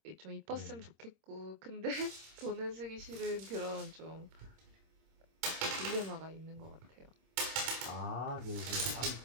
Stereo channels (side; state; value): left; late; 26 ms